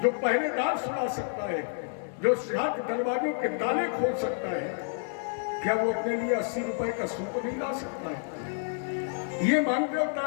जो पहरेदार सुना सकता है, जो 7 दरवाजों के ताले खोल सकता है, क्या वो अपने लिए 80 रुपए का सूप नहीं ला सकता है? ये मानते हो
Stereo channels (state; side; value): silent; right; 58 dB below the other